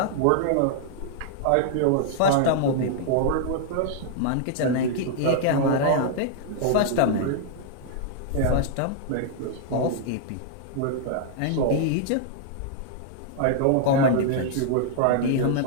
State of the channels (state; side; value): different; both; correlation -0.01